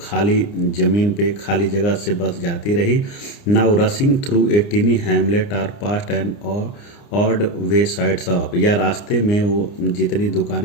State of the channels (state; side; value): late; right; 29 ms